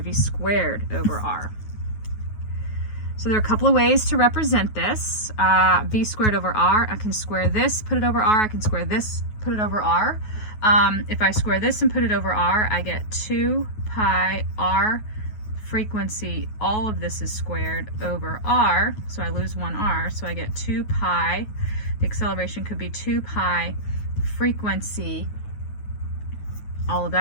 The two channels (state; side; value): late; right; 9.3 ms